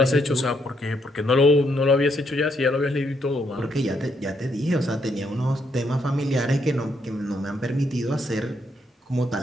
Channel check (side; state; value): both; normal; correlation 0.75